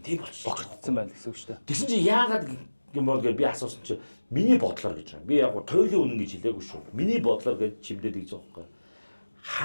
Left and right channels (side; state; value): both; inverted; correlation -1.00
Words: тийм болчихжээ. Богцсон байна гэсэн үг шүү дээ. Тэгсэн чинь яагаад юм бол гэж би асуусан чинь миний бодлоор гэж байна. Би яг туйлын үнэн гэж хэлээгүй шүү. Миний бодлоор гэж чимдээд гэж байгаа байхгүй.